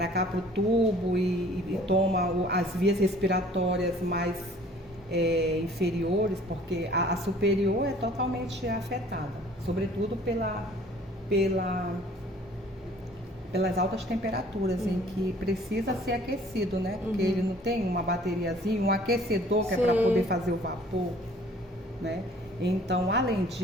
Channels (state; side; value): normal; both; correlation 0.53